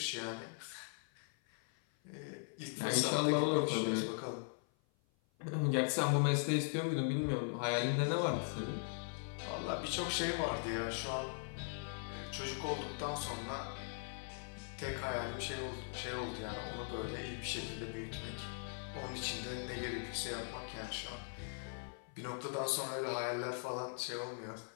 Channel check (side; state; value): right; silent; 51 dB below the other